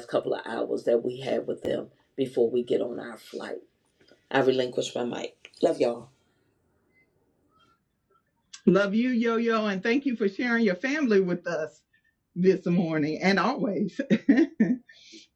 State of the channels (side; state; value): both; identical; correlation 1.00